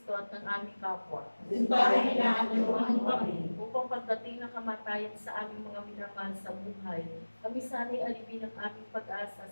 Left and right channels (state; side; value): inverted; both; correlation -1.00